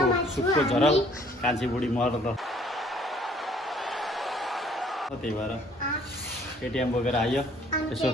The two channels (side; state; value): both; normal; correlation 0.59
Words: सुक्को झरल कान्छी बुढी मर्न त त्यही भएर एटिएम बोकेर आयो। यसो